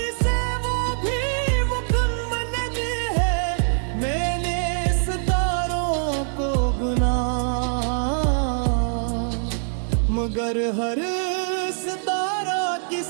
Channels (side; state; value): left; silent; digital silence